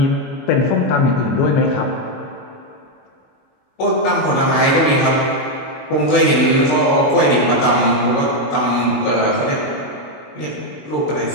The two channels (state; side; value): late; right; 22 ms